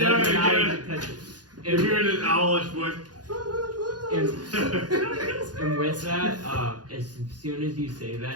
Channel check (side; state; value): left; late; 0.69 ms